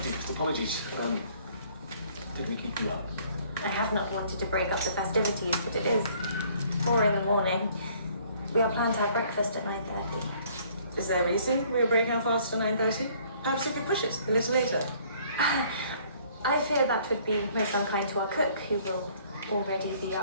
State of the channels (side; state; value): both; inverted; correlation -0.59